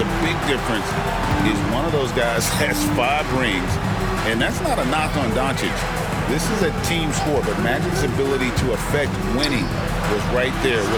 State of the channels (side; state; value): both; identical; correlation 1.00